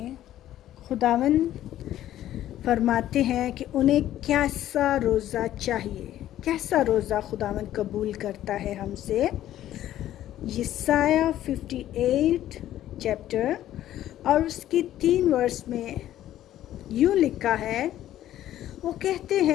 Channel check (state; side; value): quieter; right; 12.8 dB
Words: خداوند فرماتے ہیں کہ انہیں کیسا روزہ چاہیے، کیسا روزہ خداوند قبول کرتا ہے ہم سے۔ یسایہ 58 چیپٹر اور اس کی 3 ورس میں یوں لکھا ہے، وہ کہتے